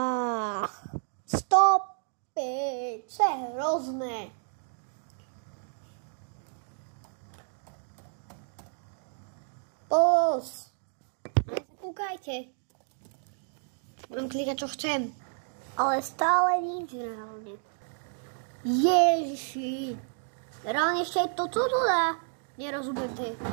Stop it. Co je hrozné. Pulse. Ale sa kúkajte. Budem klikať, čo chcem. Ale stále nič reálne. Ježiši. Reálne ešte aj toto dá. Nerozumiem tie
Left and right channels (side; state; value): left; silent; 57 dB below the other